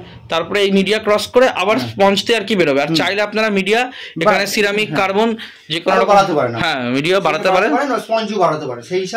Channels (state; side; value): identical; both; correlation 1.00